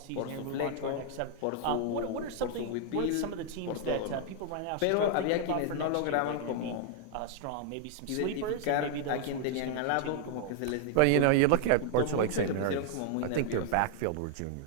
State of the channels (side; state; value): both; different; correlation 0.00